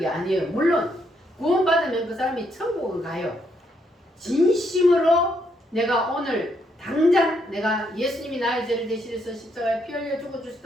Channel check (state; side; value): normal; both; correlation 0.75